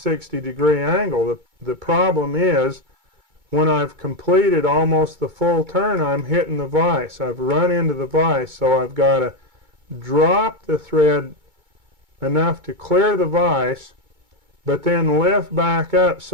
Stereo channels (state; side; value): late; left; 2.2 ms